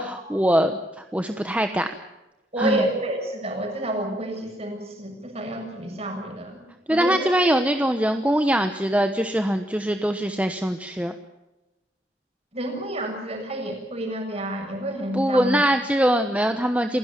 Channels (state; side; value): normal; both; correlation 0.76